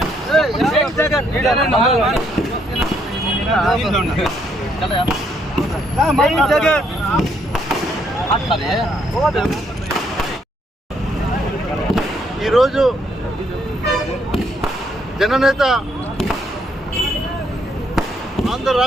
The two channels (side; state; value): both; normal; correlation 0.71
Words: ఈరోజు జననేత ఆంధ్ర